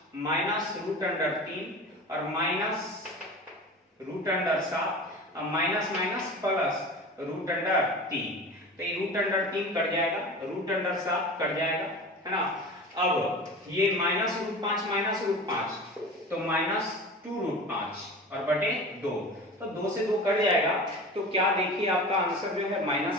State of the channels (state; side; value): normal; both; correlation 0.34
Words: minus root under 3 और माइनस रूट अंडर 7 और minus minus plus root under 3, तो ये रूट अंडर 3 कट जाएगा, रूट अंडर 7 कट जाएगा, है ना। अब ये माइनस रूट 5 माइनस रूट 5 तो माइनस 2 रूट 5 और बटे 2, तो 2 से 2 कट जाएगा। तो क्या देखिए आपका आंसर जो है